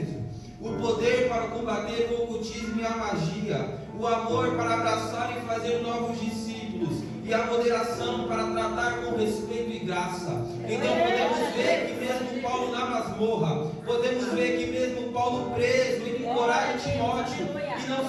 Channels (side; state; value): both; identical; correlation 1.00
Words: O poder para combater o ocultismo e a magia, o amor para abraçar e fazer novos discípulos, e a moderação para tratar com respeito e graça. Então podemos ver que mesmo Paulo na masmorra, podemos ver que mesmo Paulo preso, ele encoraja Timóteo, e não